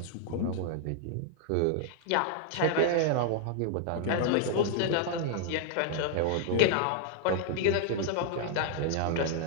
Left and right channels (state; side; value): different; both; correlation 0.00